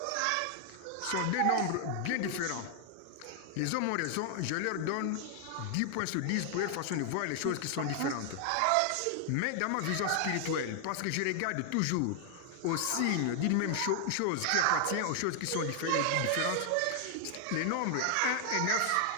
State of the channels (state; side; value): different; both; correlation 0.00